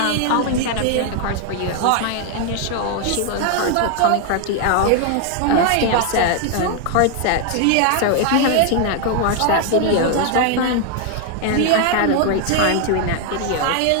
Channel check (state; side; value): different; both; correlation 0.00